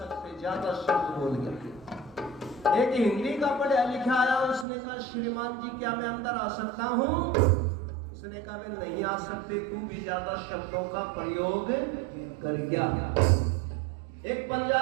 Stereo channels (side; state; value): left; drops out; at 4.7 s